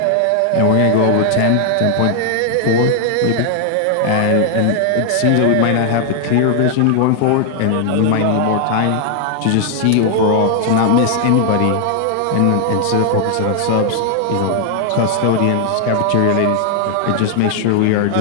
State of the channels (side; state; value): both; different; correlation 0.00